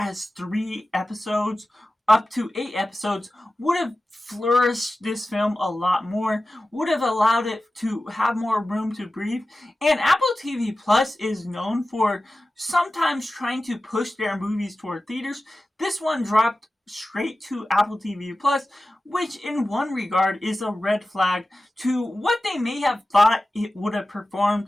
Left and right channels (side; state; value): both; normal; correlation 0.94